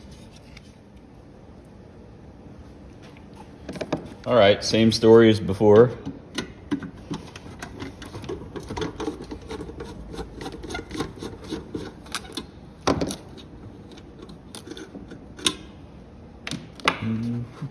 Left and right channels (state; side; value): identical; both; correlation 1.00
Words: All right, same story as before.